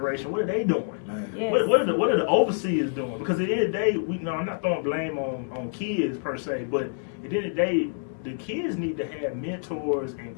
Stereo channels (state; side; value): silent; right; digital silence